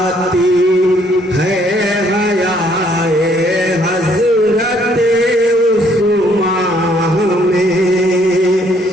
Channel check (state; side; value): normal; both; correlation 0.65